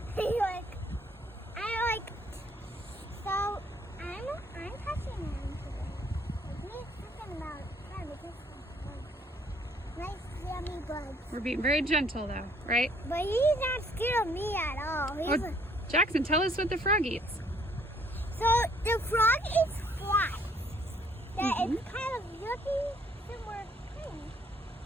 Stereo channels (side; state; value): both; normal; correlation 0.64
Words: So I'm touching him today. Like me thinking about trying to get some nice yummy bugs. We're being very gentle though, right? But he's not scared of me at all. Jackson, tell us what the frog eats. So the frog is flies. That is kind of yucky, similar thing.